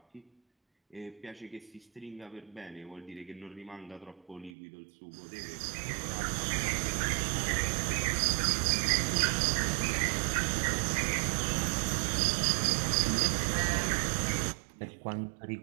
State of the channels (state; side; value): drops out; left; at 4.5 s